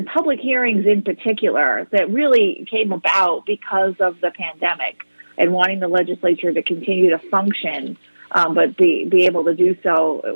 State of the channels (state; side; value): inverted; both; correlation -1.00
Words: public hearings in particular that really came about because of the pandemic and wanting the legislature to continue to function, but be able to do so